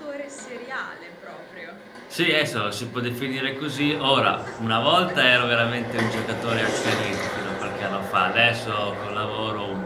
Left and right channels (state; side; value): identical; both; correlation 1.00